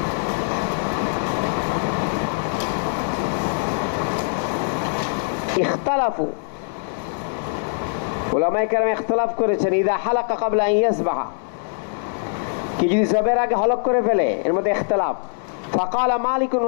ইখতালাফু, উলামায়ে কেরাম ইখতিলাফ করেছেন ইদা হালাকা ক্বাবলা আন ইয়াযবাহা, কি যদি জবের আগে হলক করে ফেলে, এর মধ্যে ইখতিলাফ। ফাকালা মালিক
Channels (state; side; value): silent; right; digital silence